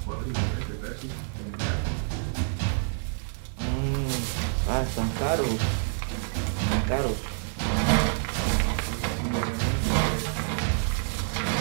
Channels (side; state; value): left; silent; 60 dB below the other